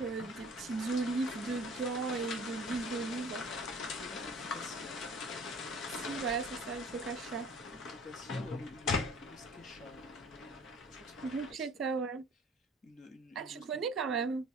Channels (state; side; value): normal; both; correlation 0.48